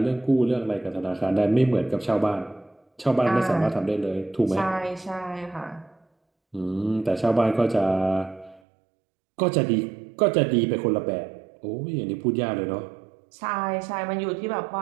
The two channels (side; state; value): left; drops out; at 8.6 s